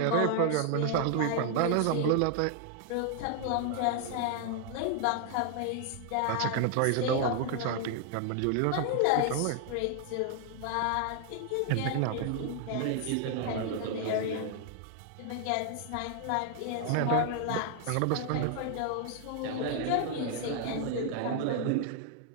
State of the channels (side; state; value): both; different; correlation 0.00